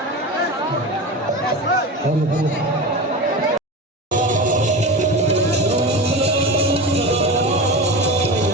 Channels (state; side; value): normal; both; correlation 0.26